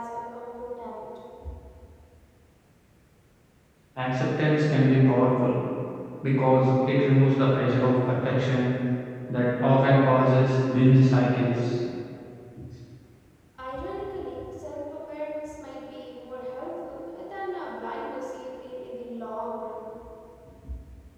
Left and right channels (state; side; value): identical; both; correlation 1.00